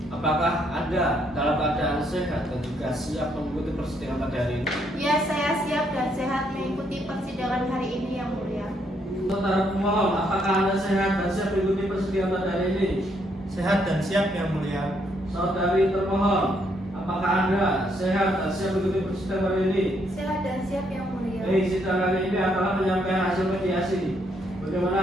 apakah Anda dalam keadaan sehat dan juga siap mengikuti persidangan pada hari ini? Ya, saya siap dan sehat mengikuti persidangan hari ini yang mulia. Saudara pemohon, apakah Anda sehat dan siap mengikuti persidangan pada hari ini? Sehat dan siap yang mulia. Saudari termohon, apakah Anda sehat dan siap mengikuti persidangan hari ini? Sehat dan siap yang mulia. Baik, sidang hari ini adalah penyampaian hasil mediasi.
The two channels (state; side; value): normal; both; correlation 0.73